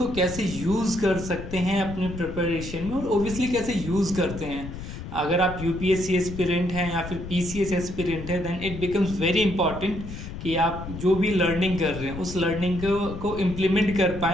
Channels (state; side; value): noise; left; rumble, 10 dB below the sound